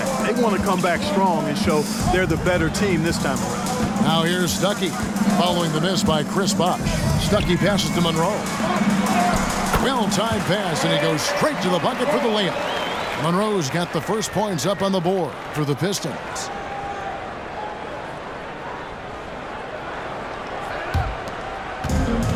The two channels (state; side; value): identical; both; correlation 1.00